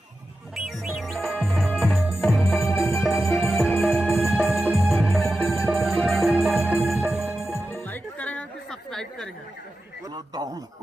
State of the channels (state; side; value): normal; both; correlation 0.92